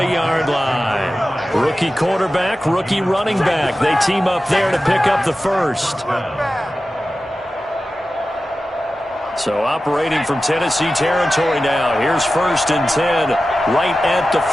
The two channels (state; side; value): normal; both; correlation 0.94